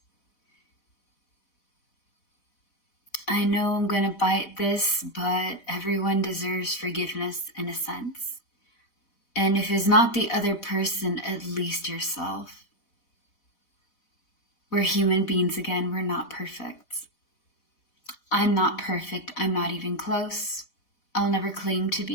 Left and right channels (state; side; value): late; right; 4.1 ms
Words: I know I'm going to bite this, but everyone deserves forgiveness in a sense. And if it's not the other person, at least yourself. We're human beings again. We're not perfect. I'm not perfect. I'm not even close. I'll never claim to